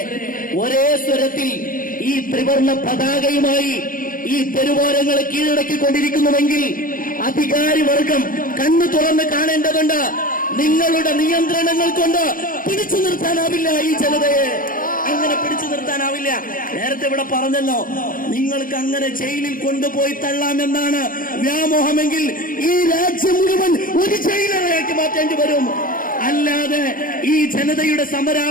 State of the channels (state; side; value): late; right; 0.40 ms